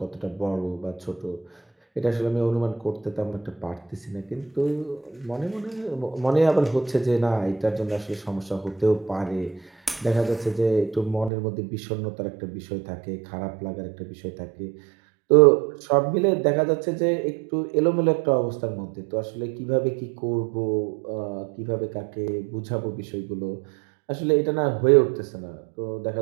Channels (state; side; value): drops out; left; at 11.3 s